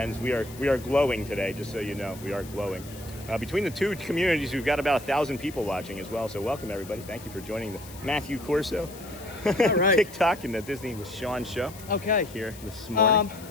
We are glowing today, just so you know. We are glowing. Between the two communities, we've got about 1,000 people watching as well. So welcome, everybody. Thank you for joining the Matthew Corso All right. TikTok and the Disney with Sean show. Okay. Here this morning.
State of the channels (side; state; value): left; noise; hiss, 18 dB below the sound